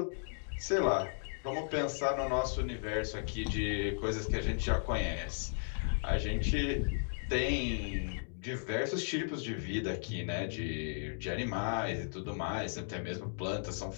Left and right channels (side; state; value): right; silent; digital silence